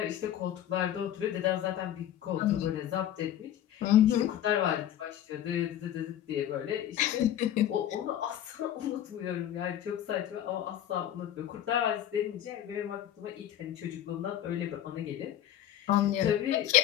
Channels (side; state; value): right; quieter; 11.4 dB